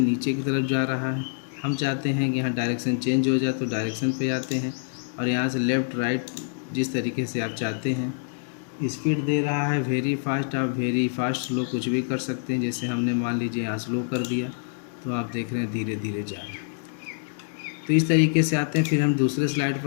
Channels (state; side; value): silent; right; digital silence